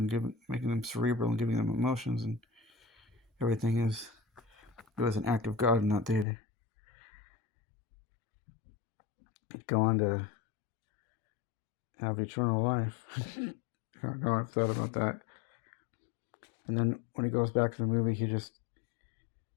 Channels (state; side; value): drops out; right; at 6.2 s